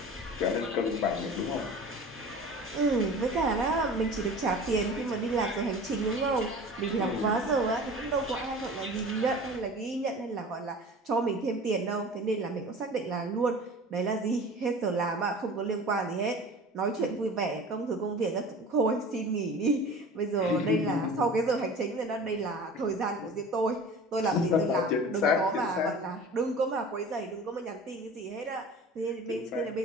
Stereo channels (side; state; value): both; normal; correlation 0.39